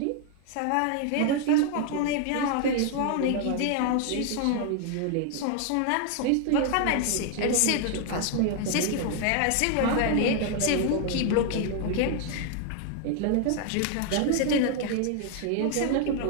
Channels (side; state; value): both; different; correlation 0.00